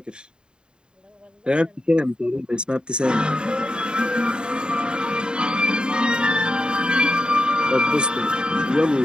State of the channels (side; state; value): left; late; 0.050 ms